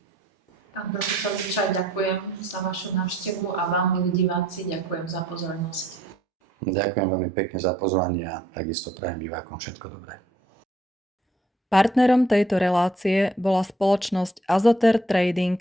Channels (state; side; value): normal; both; correlation 0.64